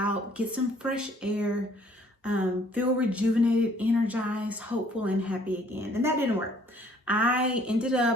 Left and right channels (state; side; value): normal; both; correlation 0.60